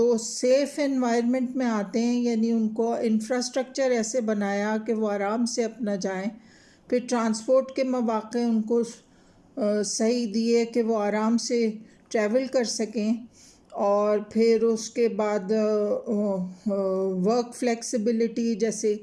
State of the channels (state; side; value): identical; both; correlation 1.00